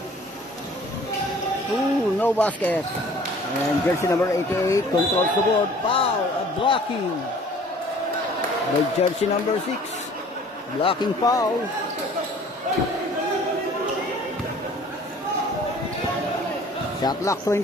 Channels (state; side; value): normal; both; correlation 0.51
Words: Ooh, no basket. And jersey number 88 controls the board. Foul, a blocking. By jersey number 6. Blocking foul. Shot clock